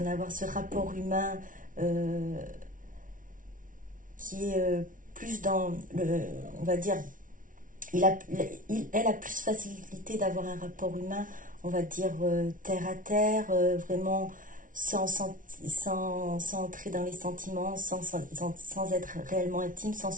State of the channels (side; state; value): left; late; 0.38 ms